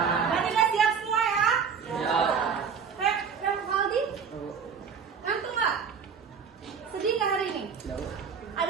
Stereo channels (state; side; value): quieter; left; 6.5 dB